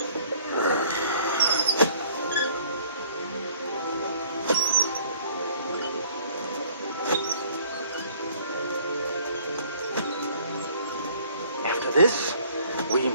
After this, we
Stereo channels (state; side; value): inverted; both; correlation -0.57